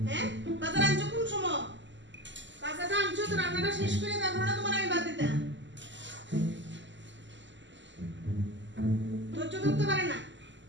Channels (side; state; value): left; late; 0.54 ms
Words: হ্যাঁ, বাজার আনছো কোন সময়? বাজারটা আনছো তো রান্নাটা শেষ করে তারপর না তোমার আমি বাদ দিতাম। ধৈর্য ধরতে পারে না।